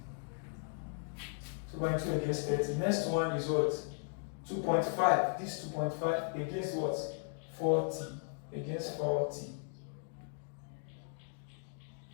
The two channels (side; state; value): right; silent; 53 dB below the other